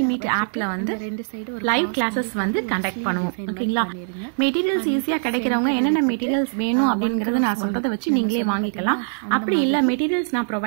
Meet ஆப்பில் வந்து லைவ் கிளாஸஸ் வந்து கண்டக்ட் பண்ணுவோம். ஓகேங்களா? மெட்டீரியல்ஸ் ஈஸியாக கிடைக்கிறவங்க என்னென்ன மெட்டீரியல்ஸ் வேணும் அப்படிங்கிறத நான் சொல்கிறத வச்சு நீங்களே வாங்கிக்கலாம். அப்படி இல்லை மெட்டீரியல்ஸ் நான்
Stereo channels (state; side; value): silent; left; digital silence